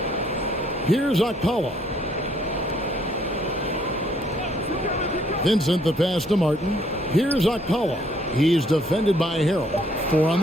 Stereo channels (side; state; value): both; normal; correlation 0.66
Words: Here's Okpala. Vincent, the pass to Martin. Here's Okpala. He's defended by Harrell. 4 on